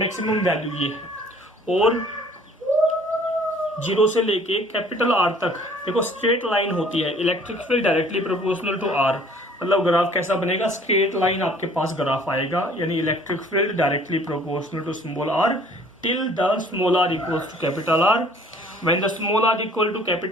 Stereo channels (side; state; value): both; normal; correlation 0.54